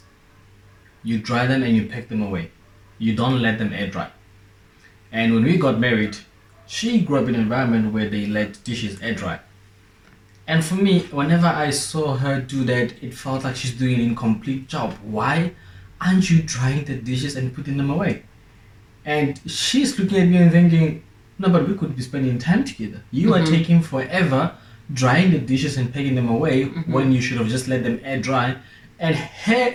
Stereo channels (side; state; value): both; identical; correlation 1.00